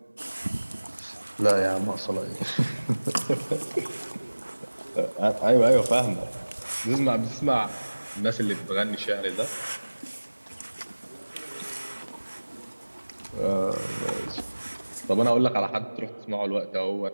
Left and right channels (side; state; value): both; inverted; correlation -1.00